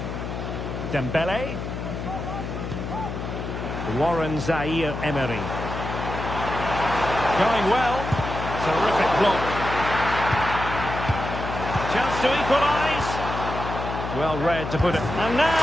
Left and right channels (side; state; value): left; noise; hum, 6 dB below the sound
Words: Dembele. Warren Zaire Emery. Going well. Terrific block. Chance to equalise. Well read to put it. And